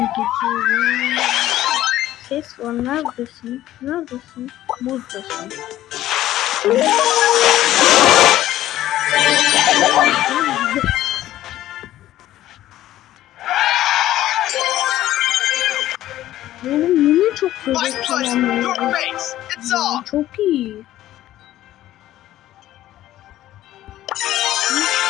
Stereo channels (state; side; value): quieter; right; 13.9 dB